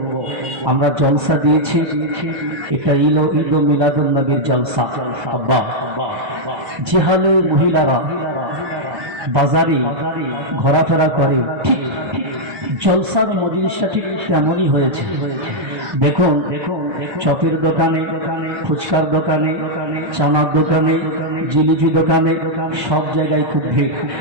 আমরা জলসা দিয়েছি, এটা ঈদ মিলাদুন নবীর জলসা। আব্বা, যে হালে মহিলারা বাজারে ঘোরাফেরা করে ঠিক জলসার মজলিসটা ঠিক তেমনই হয়েছে। দেখুন, চপের দোকানে, ফুচকার দোকানে, চানার দোকানে, জিলিপি দোকানে, সব জায়গায় খুব ভিড়।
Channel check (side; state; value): left; late; 1.2 ms